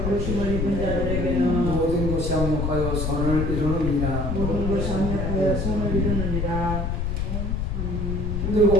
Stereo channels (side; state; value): left; noise; rumble, 1 dB below the sound